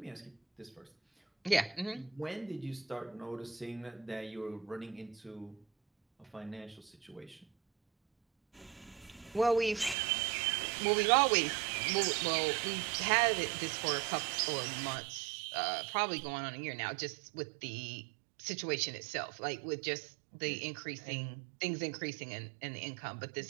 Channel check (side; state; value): left; drops out; at 10.0 s